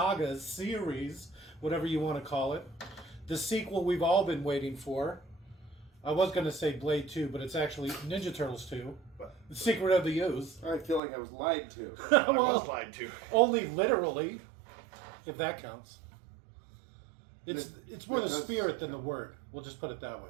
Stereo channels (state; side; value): drops out; left; at 11.0 s